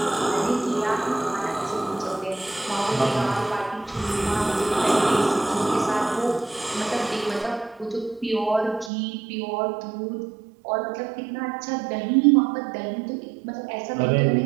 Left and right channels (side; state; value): left; drops out; at 8.9 s